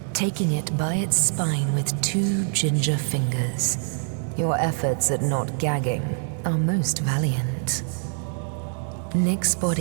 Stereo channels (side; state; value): left; silent; 62 dB below the other